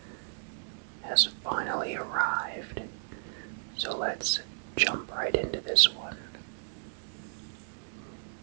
has finally arrived. So let's jump right into this one.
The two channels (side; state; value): left; silent; digital silence